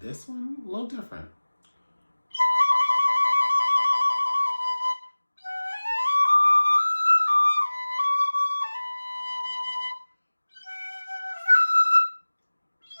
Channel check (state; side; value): inverted; both; correlation -1.00